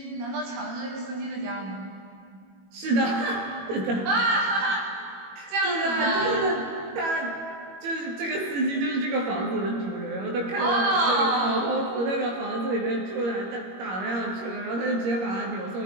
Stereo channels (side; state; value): left; late; 21 ms